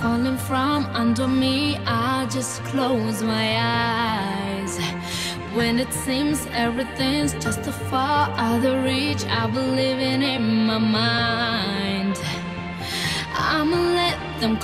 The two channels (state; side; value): identical; both; correlation 1.00